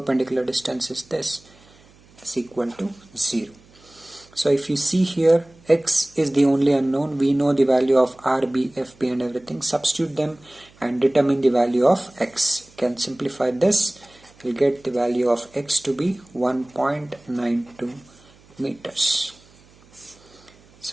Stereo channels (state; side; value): noise; right; hum, 28 dB below the sound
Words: distance is this, is equal to 0. So if you see here, x is the only unknown. We know the value of Rb, Fb and everything. Substitute them and determine the value of x. You can simplify this. You'll get the value of x to be 1.92 meters.